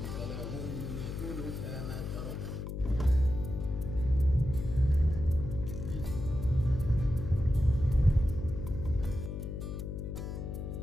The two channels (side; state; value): left; noise; hum, 6 dB below the sound